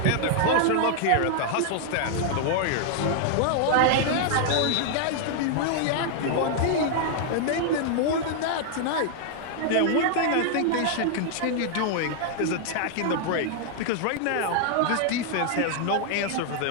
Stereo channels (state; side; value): different; both; correlation 0.00